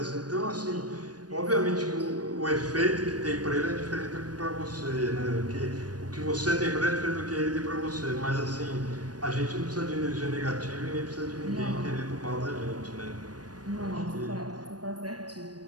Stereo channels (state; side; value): late; left; 0.69 ms